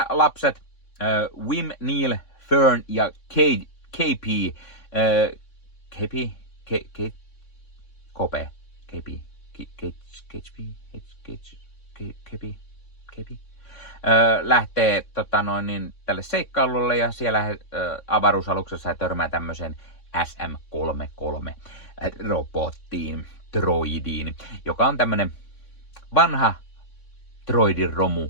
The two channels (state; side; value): late; right; 3.6 ms